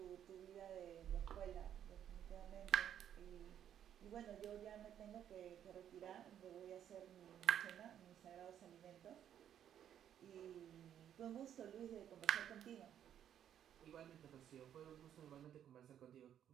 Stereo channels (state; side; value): quieter; left; 9.9 dB